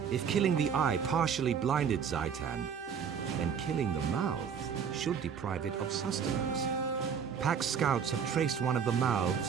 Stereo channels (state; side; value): quieter; left; 7.2 dB